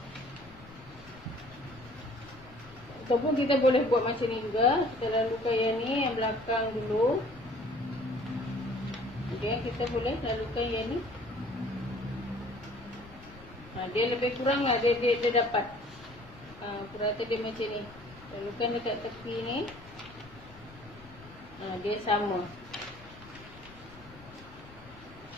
Ataupun kita boleh buat macam ni juga. Kita lalukan yang ni, yang belakang dulu. Okay, kita boleh lalukan yang ni. Dia lebih kurang lah, dia dapat purata dia macam ni. Lalukan dekat tepi ni. Dia sama.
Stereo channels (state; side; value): noise; left; rumble, 20 dB below the sound